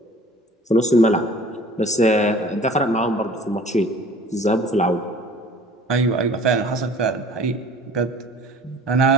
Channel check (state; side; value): normal; both; correlation 0.47